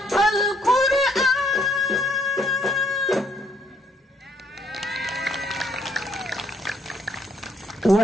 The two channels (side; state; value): both; normal; correlation 0.69